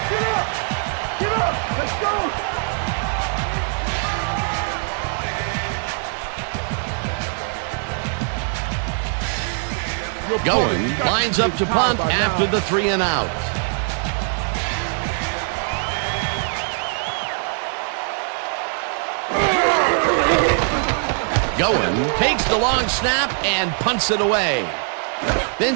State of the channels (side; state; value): left; silent; 57 dB below the other